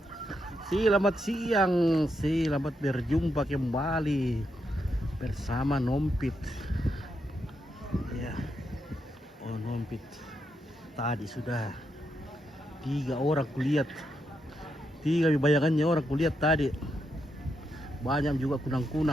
Selamat siang, selamat berjumpa kembali bersama Nompit. Ya, Nompit. Tadi sudah 3 orang kulihat, 3 bayangannya orang kulihat tadi. Banyak juga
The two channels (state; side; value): normal; both; correlation 0.82